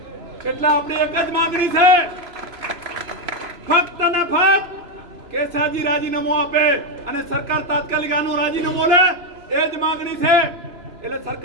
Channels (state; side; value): late; left; 3.0 ms